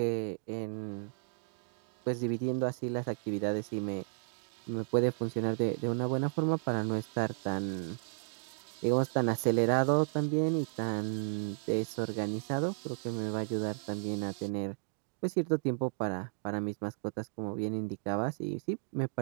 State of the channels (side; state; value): left; silent; digital silence